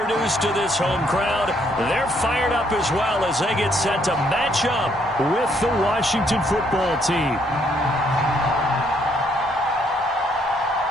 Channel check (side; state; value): both; normal; correlation 0.69